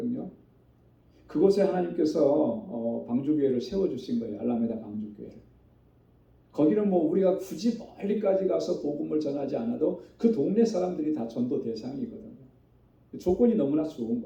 그곳에 하나님께서 방주교회를 세워주신 거예요. 알라메다 방주교회를. 거기는 우리가 굳이 멀리까지 가서 복음을 전하지 않아도 그 동네 사람들이 다 전도 대상이거든요. 조건이 너무나 좋은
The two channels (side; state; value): both; identical; correlation 1.00